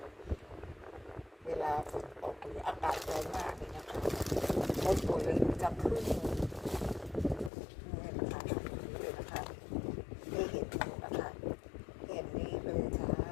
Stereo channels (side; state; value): right; drops out; at 7.5 s